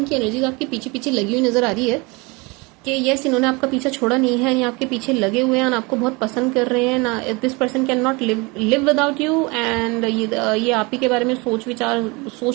एनर्जीज आपके पीछे पीछे लगी हुई नजर आ रही है कि यस इन्होंने आपका पीछा छोड़ा नहीं है, ये आपके पीछे लगे हुए हैं, आपको बहुत पसंद कर रहे हैं ना। This person can not live without you, and ये आप ही के बारे में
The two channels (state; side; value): quieter; left; 26.9 dB